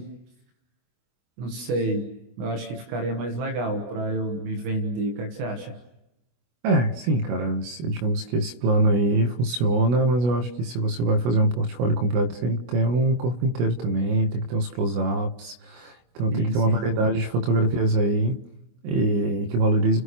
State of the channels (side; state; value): left; late; 25 ms